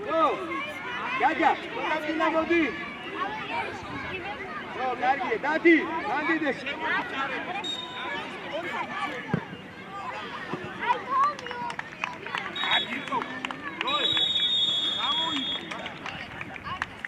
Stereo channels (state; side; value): identical; both; correlation 1.00